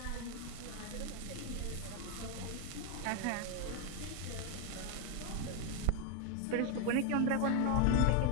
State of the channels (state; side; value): different; both; correlation 0.01